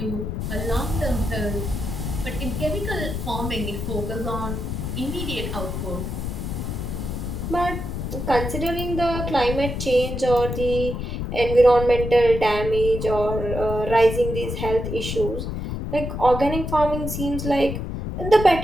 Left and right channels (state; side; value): noise; left; rumble, 4 dB below the sound